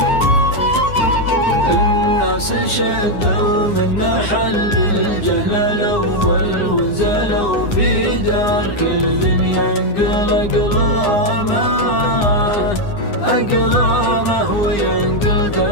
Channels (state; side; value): late; right; 9.8 ms